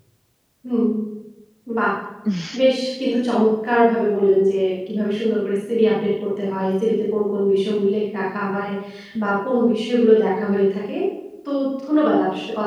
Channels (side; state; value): both; identical; correlation 1.00